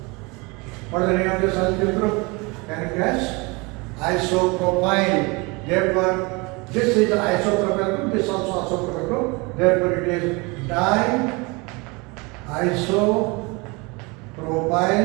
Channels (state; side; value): quieter; left; 27.0 dB